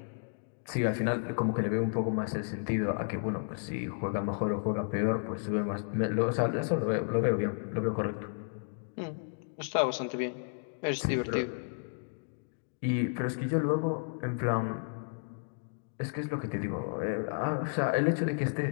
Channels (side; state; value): right; silent; digital silence